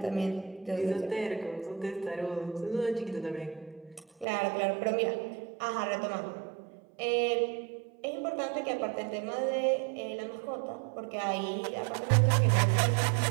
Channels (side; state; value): left; drops out; at 4.2 s